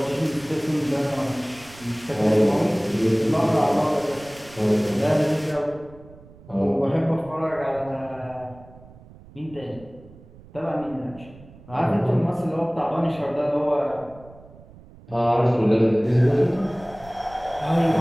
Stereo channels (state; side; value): noise; right; rumble, 22 dB below the sound